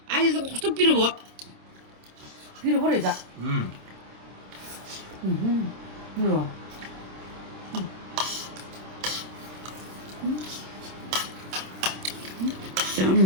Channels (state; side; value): late; left; 26 ms